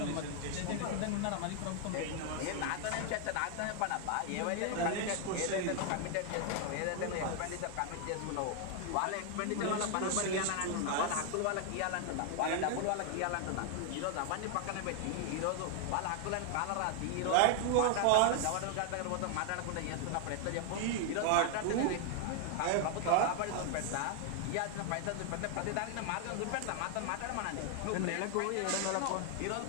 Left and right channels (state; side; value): different; both; correlation 0.00